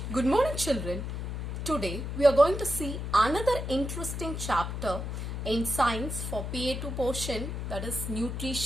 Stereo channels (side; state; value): left; noise; hum, 4 dB below the sound